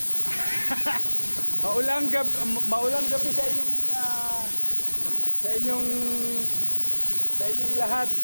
maulang gabi sa inyong sa inyong sa inyong lahat.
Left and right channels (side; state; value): both; inverted; correlation -1.00